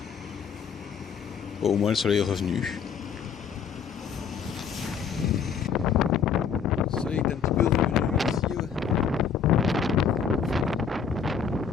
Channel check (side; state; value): right; quieter; 6.8 dB